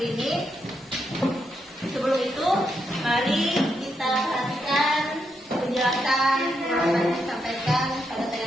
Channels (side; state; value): both; normal; correlation 0.81